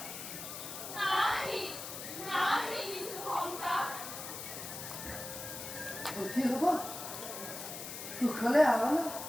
কি হব সুখলে আওয়াল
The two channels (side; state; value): left; noise; hiss, 8 dB below the sound